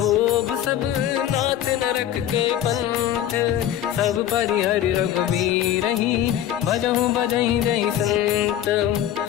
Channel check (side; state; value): right; quieter; 11.3 dB